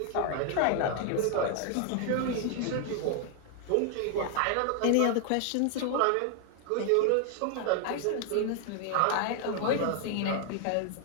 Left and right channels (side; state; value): both; different; correlation 0.00